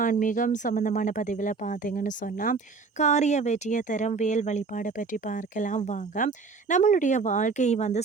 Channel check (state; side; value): quieter; left; 4.5 dB